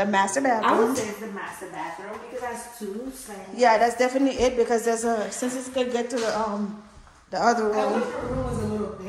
master bathroom. I would say it's the master bathroom because that's 2 sinks. Yeah, that's definitely it because there's a since it's gonna get to the other room. I wish the room was a little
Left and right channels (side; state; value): both; identical; correlation 1.00